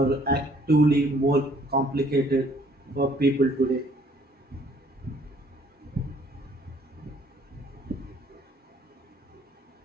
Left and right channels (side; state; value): both; normal; correlation 0.61